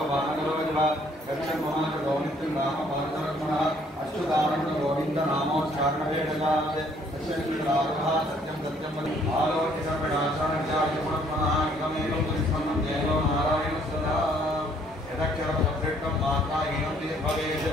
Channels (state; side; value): normal; both; correlation 0.63